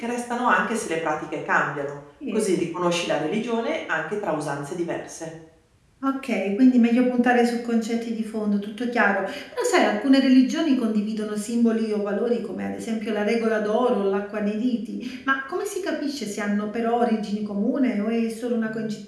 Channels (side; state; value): both; identical; correlation 1.00